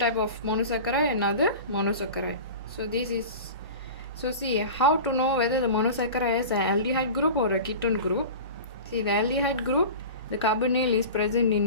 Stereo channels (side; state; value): both; inverted; correlation -0.34